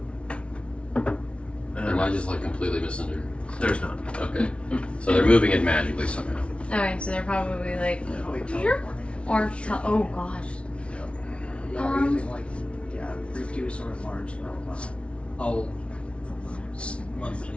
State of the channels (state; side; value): late; right; 0.060 ms